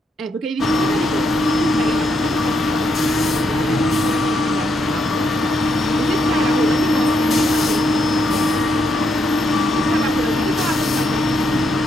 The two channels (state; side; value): normal; both; correlation 0.78